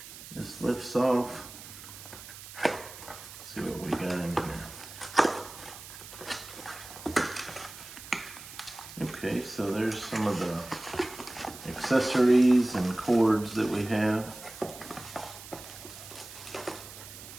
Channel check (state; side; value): noise; right; hiss, 14 dB below the sound